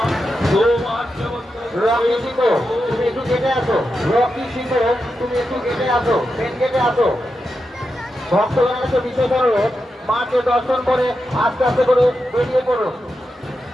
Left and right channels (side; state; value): both; normal; correlation 0.88